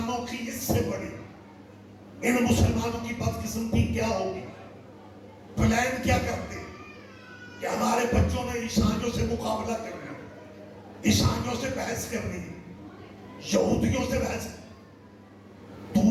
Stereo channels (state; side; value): identical; both; correlation 1.00